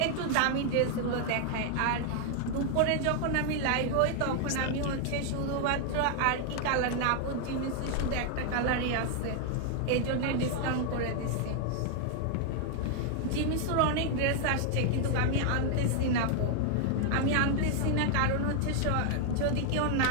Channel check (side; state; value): both; different; correlation 0.00